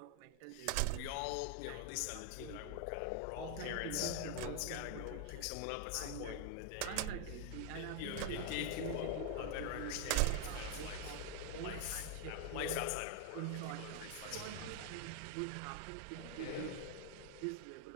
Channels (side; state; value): both; different; correlation 0.00